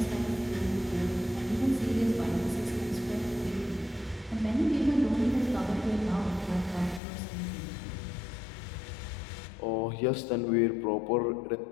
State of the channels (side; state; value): right; drops out; at 7.0 s